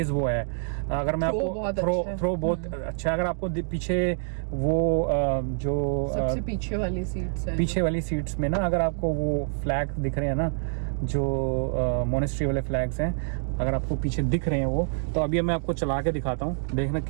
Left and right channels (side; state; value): left; silent; digital silence